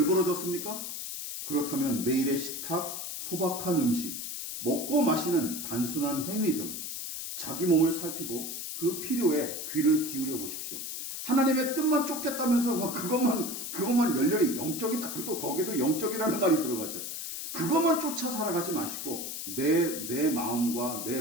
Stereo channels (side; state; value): left; noise; hiss, 6 dB below the sound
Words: 그렇다면 매일의 식탁, 소박한 음식, 먹고 마시는 단순한 행위 등 자기 몸을 살피고 그 필요에 귀를 기울여 보십시오. 하나님의 뜻만 쫓겠다면서 그것만 열렬히 영적이다. 그것도 거기도 영적이라는 말이 들어가죠. 그것만 쫓아 살아가지 마시고 내 마음과 내